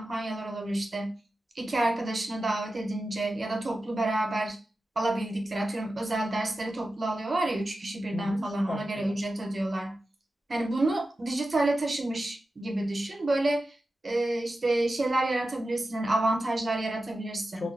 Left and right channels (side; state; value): both; normal; correlation 0.92